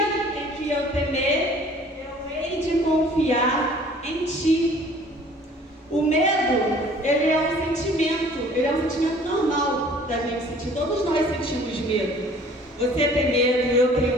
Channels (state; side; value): normal; both; correlation 0.52